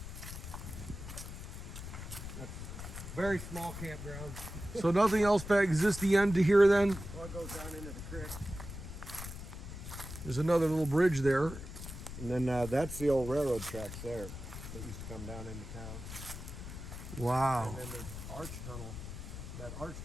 Very small campground. So nothing else back, is this the end to here then? Well, it goes down into the creek. There's another little bridge there. And then that's the old railroad tracks there that used to come down into town. Wow. And then the arch tunnel. That arch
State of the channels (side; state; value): left; noise; rumble, 9 dB below the sound